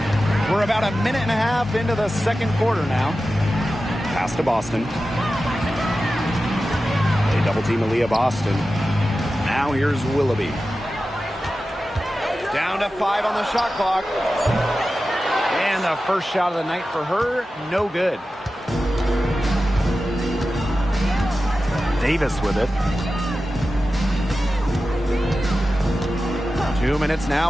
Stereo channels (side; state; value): both; normal; correlation 0.93